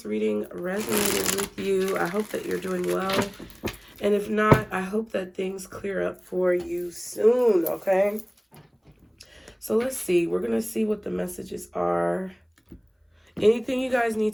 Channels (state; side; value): identical; both; correlation 1.00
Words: reading resonated with you. I hope that you're doing well. And if not, I hope that things clear up for you soon, okay? So let's see. We're going to see what the messages are. Anything you guys need